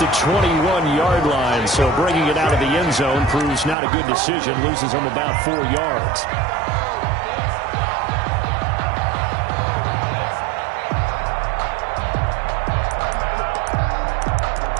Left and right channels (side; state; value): left; drops out; at 3.8 s